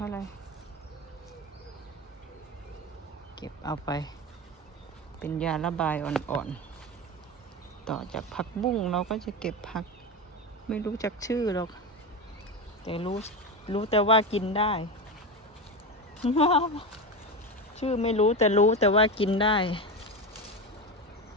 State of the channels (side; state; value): both; normal; correlation 0.20